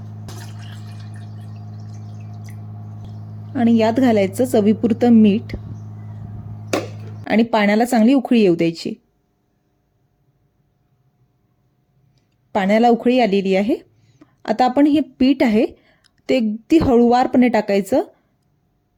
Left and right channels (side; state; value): both; identical; correlation 1.00